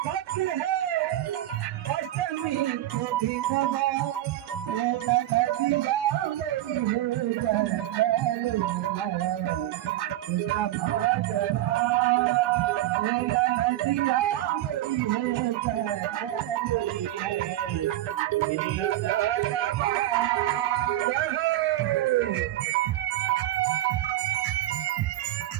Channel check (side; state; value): left; quieter; 14.4 dB